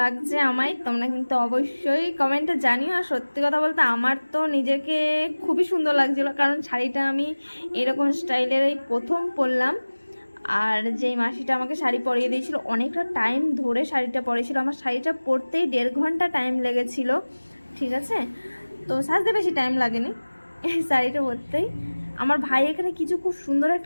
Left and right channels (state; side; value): inverted; both; correlation -1.00